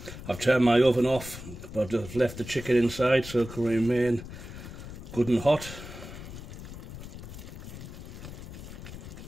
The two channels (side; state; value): left; noise; rumble, 12 dB below the sound